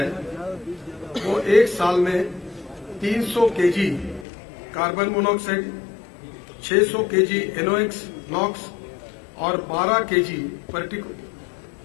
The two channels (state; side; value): drops out; right; at 4.2 s